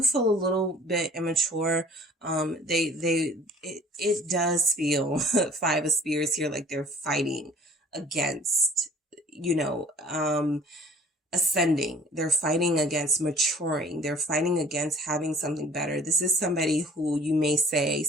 feel a little bit immature. It does feel Five of Spears here, like they're fighting against, ascending. They're fighting against maturing. They're fighting against having something better. This is somebody who you may say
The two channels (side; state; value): both; normal; correlation 0.52